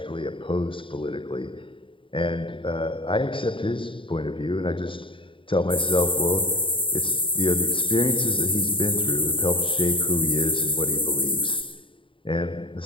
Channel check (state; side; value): late; right; 0.25 ms